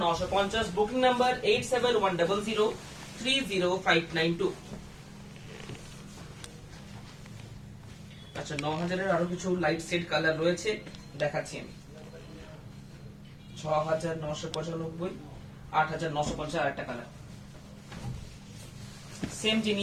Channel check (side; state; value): both; identical; correlation 1.00